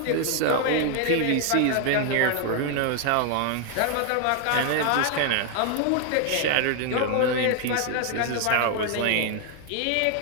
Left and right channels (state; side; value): different; both; correlation 0.00